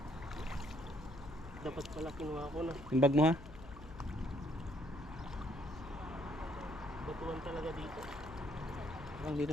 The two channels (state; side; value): noise; left; hum, 15 dB below the sound